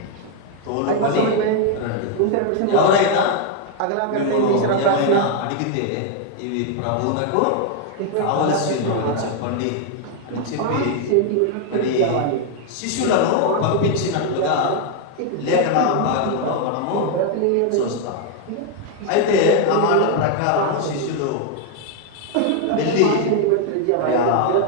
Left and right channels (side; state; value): both; different; correlation 0.00